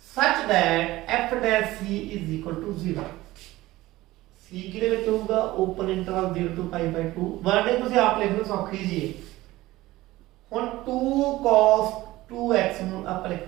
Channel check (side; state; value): left; quieter; 17.8 dB